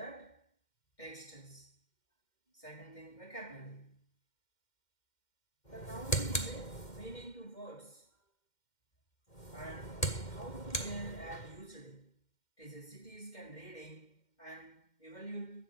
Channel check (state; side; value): late; right; 2.1 ms